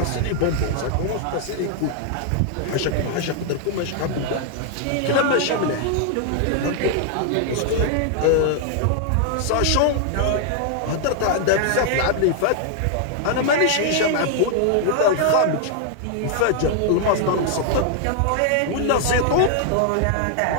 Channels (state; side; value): different; both; correlation 0.00